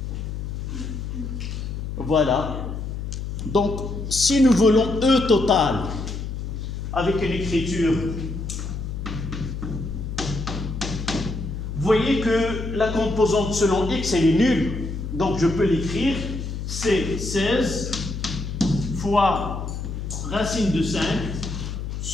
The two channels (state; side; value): noise; left; hum, 5 dB below the sound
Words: Voilà. Donc, si nous voulons E total avec une écriture, vous voyez que la composante selon X, elle est nulle. Donc, je peux l'écrire. C'est 16 fois racine de 5